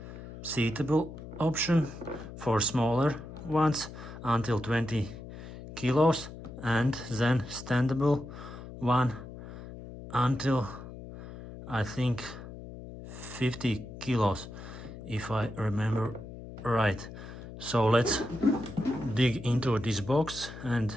seatable option for smaller ones until 20 kilos, and then standable one until I think 50 kilos, if I remember right. So let's dig into this box and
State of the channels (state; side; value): noise; left; hum, 13 dB below the sound